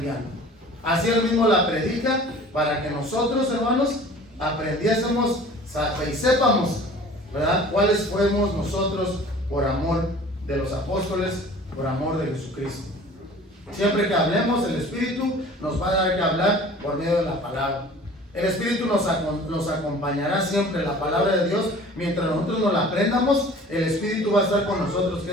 Así él mismo la predica para que nosotros, hermanos, aprendiésemos y sepamos, ¿verdad?, cuáles fuimos nosotros por amor de los apóstoles, por amor de Jesucristo. Siempre que hablemos, el Espíritu nos va a dar que hablar por medio de la palabra. El Espíritu nos acompañará siempre, la palabra de Dios. Mientras nosotros nos la aprendamos, el Espíritu va a estar con nosotros, que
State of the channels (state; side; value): normal; both; correlation 0.46